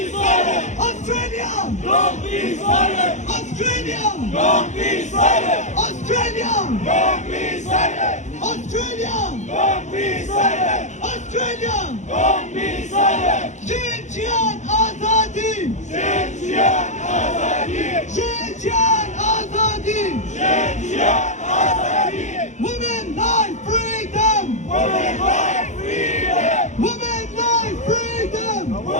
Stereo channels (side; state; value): right; late; 0.34 ms